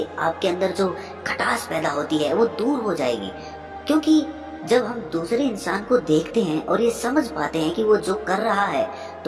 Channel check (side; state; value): both; identical; correlation 1.00